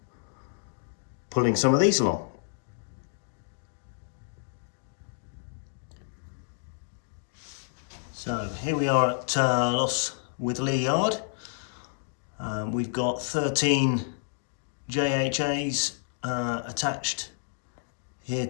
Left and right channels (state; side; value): silent; right; digital silence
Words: pulling some of these along. So here we are at Loss Witherley Yard. We've got 13 JHAs attached here